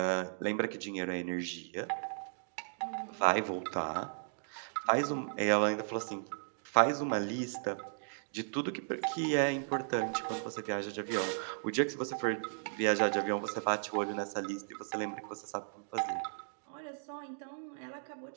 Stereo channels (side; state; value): left; silent; digital silence